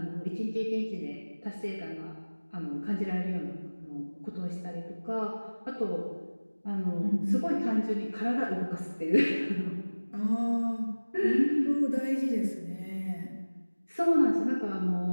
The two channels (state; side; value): inverted; both; correlation -1.00